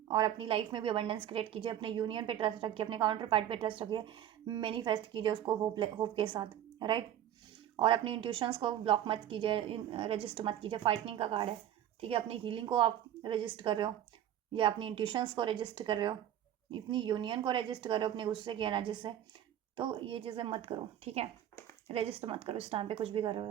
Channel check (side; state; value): left; quieter; 11.2 dB